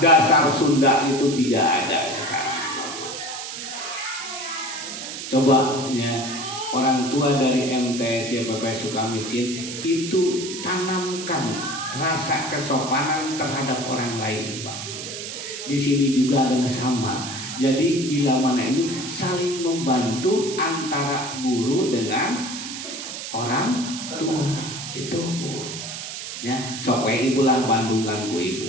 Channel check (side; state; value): right; noise; hiss, 8 dB below the sound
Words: Sunda itu tidak ada sekarang. Coba ya orang tua dari MTS YPP Sukamiskin itu tanamkan rasa kesopanan terhadap orang lain, Pak. Di sini juga adalah sama. Jadi bila mana ini saling membantu antara guru dengan orang tua itu, ya. Sok we ibu lah bandungan ku